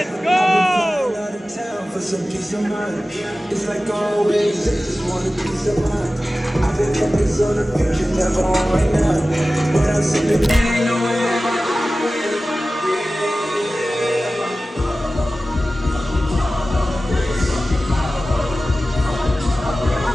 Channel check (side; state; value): both; normal; correlation 0.96